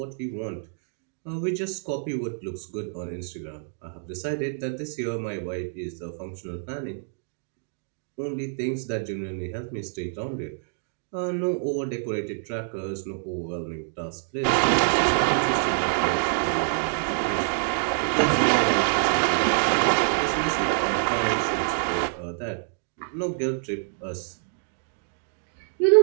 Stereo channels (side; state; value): left; silent; digital silence